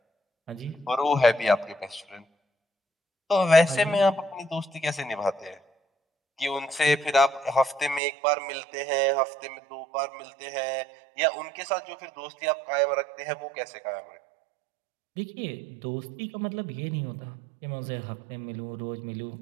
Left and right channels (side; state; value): left; drops out; at 8.0 s